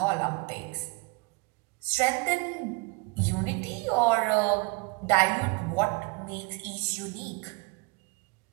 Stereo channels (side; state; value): left; quieter; 27.7 dB